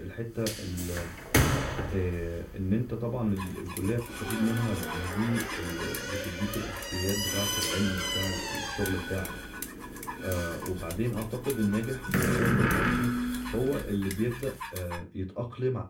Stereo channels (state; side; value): identical; both; correlation 1.00